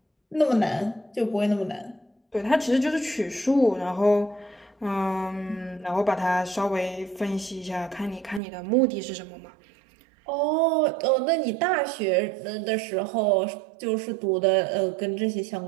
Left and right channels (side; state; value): left; drops out; at 8.4 s